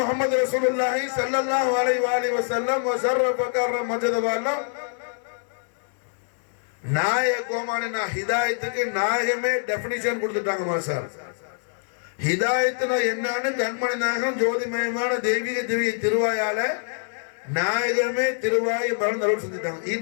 ரசூலுல்லாஹி ஸல்லல்லாஹு அலைஹி வஸல்லம் வஸர்ரஃப கர்ரம் மஜ்தவல்ல நாயக கோமானினா ஹிதாயத்துக்கு நாயகமே டெஃபினிஷன் கொடுத்துட்டாங்க மாஷா அல்லாஹ். ஹிதாயத்துனா என்னன்னு கண்மணி நாயகம் ஜோதிமயமான தெய்வீக திவ்ய திருவாயால நாயகமே திருவாய் மலர்ந்தருள் செஞ்சுட்டாங்க.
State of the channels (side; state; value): right; silent; 62 dB below the other